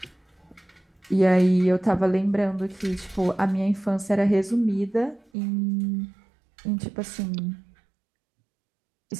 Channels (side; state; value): left; drops out; at 5.2 s